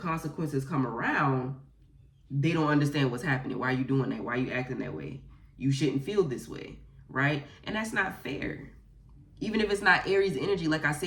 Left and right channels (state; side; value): identical; both; correlation 1.00